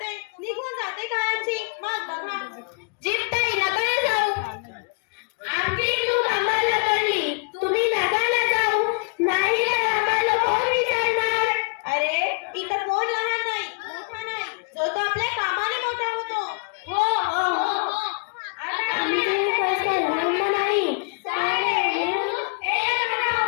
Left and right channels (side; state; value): right; quieter; 33.8 dB